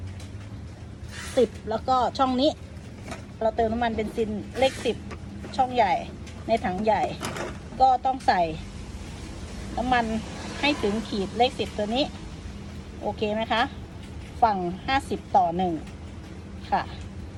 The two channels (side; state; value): both; identical; correlation 1.00